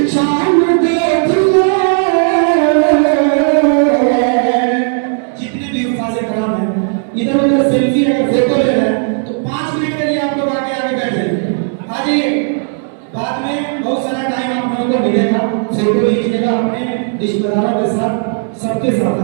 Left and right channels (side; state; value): left; silent; 58 dB below the other